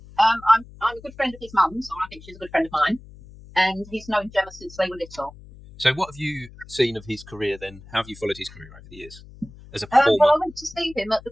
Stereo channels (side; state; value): left; noise; hum, 20 dB below the sound